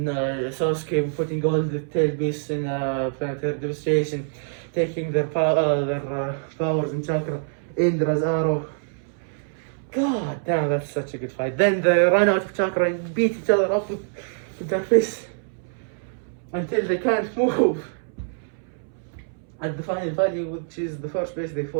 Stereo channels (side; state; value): left; silent; 62 dB below the other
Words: Sasuke putting all the tail beasts in planetary devastation, taking their powers and chakra, Indra's arrow. God damn, that's such a good fight. Then they run out of chakra and beat each other up with their fists until they can't move. At the final value, which is the first place they